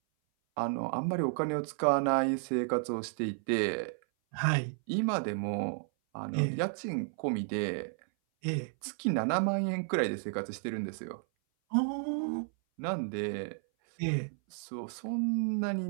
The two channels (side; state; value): left; silent; 56 dB below the other